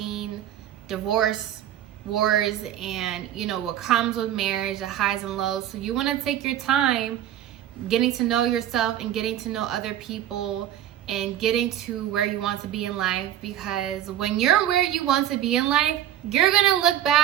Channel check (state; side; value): quieter; left; 11.7 dB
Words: divorce wars and, you know, what comes with marriage, the highs and lows. So you want to take your time getting to know yourself and getting to know other people and getting to where you want to be in life, because when you're where you want to be in life, you're gonna look